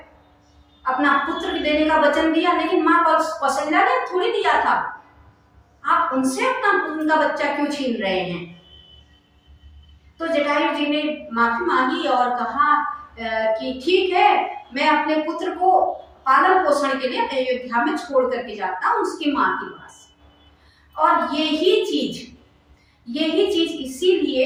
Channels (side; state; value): both; identical; correlation 1.00